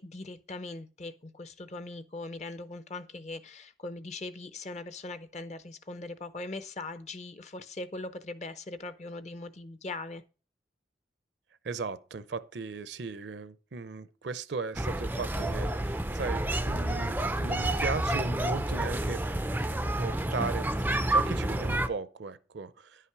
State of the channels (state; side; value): normal; both; correlation 0.63